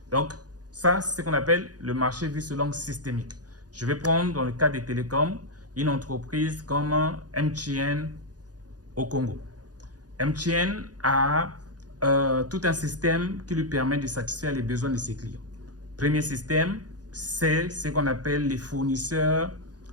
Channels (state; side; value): late; left; 0.68 ms